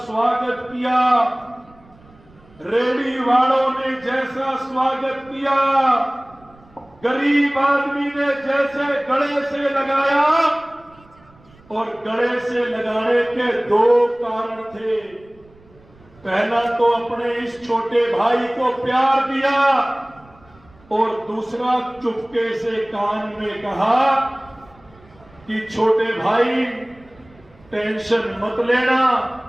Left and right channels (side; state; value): right; noise; rumble, 27 dB below the sound